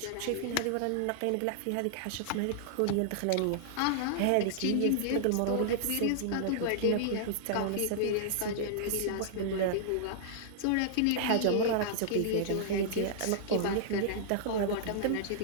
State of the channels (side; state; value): both; different; correlation -0.01